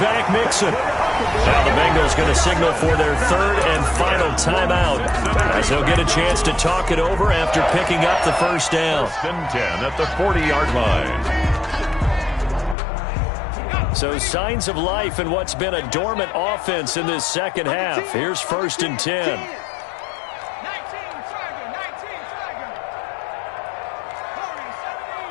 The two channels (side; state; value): right; drops out; at 12.8 s